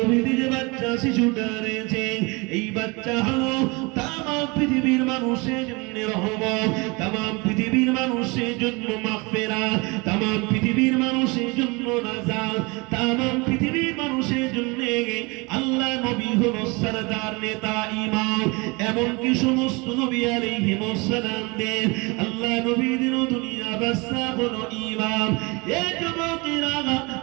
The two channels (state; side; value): quieter; left; 26.9 dB